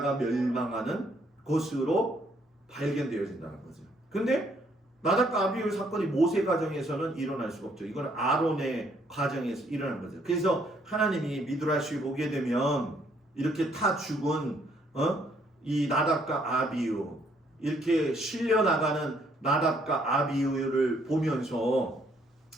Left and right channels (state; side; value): normal; both; correlation 0.68